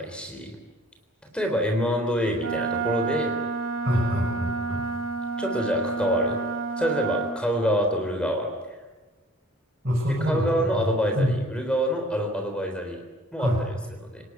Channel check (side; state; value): both; normal; correlation 0.51